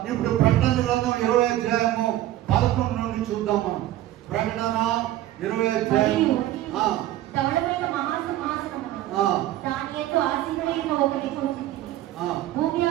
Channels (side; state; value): left; quieter; 14.1 dB